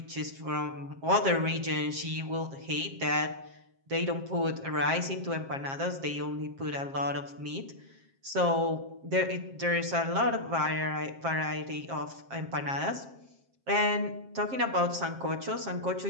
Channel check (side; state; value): left; late; 7.5 ms